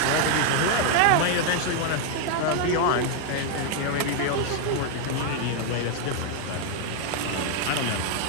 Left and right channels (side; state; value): both; different; correlation 0.00